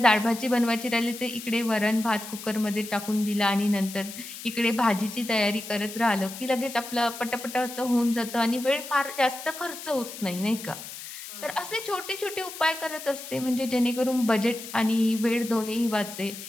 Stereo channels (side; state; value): left; noise; hiss, 11 dB below the sound